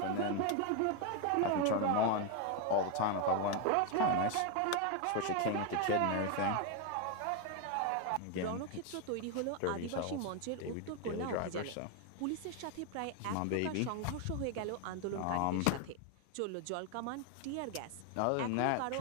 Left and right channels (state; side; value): different; both; correlation 0.01